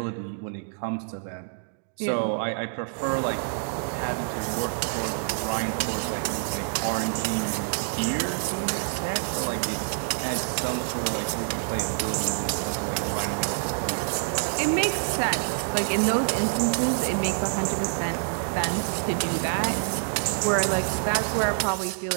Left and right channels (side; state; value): left; silent; digital silence